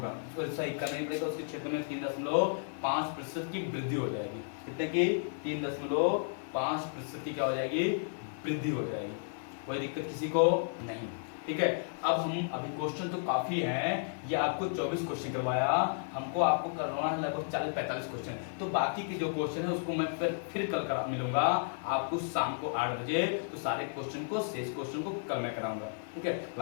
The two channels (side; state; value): right; silent; 56 dB below the other